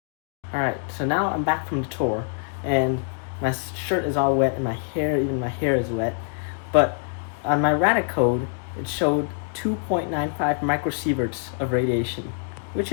Alright, so now I'm back from the tour, and my shirt is all wet, and my hair is wet, but on my Radic code, it showed 2.95 microsieverts of radiation, which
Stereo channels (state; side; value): silent; right; digital silence